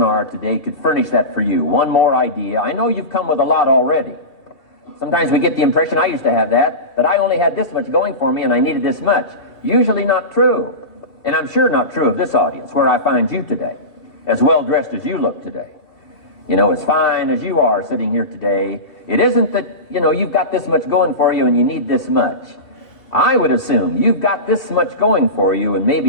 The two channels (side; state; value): right; late; 2.7 ms